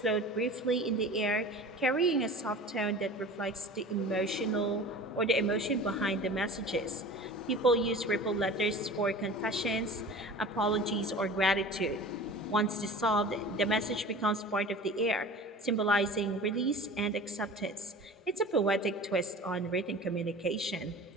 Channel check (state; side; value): normal; both; correlation 0.38